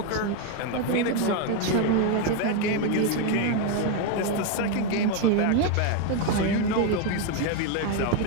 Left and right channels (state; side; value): different; both; correlation 0.02